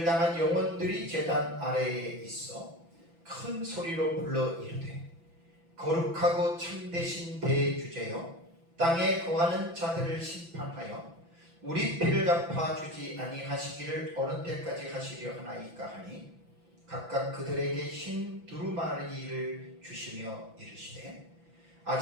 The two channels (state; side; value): late; left; 5.9 ms